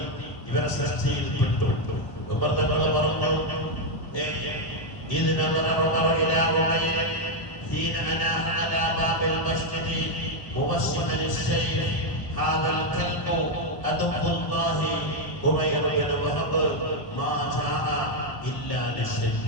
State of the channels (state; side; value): late; right; 1.0 ms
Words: ഇവരെ സൃഷ്ടിയിൽ പെട്ടു. ഉമർ തങ്ങൾ പറഞ്ഞു, إذ نظر عمر إلى عمير حين أناح على باب المسجد موسما السيف هذا الكلب عدو الله عمير بن وهب ما جاء إلا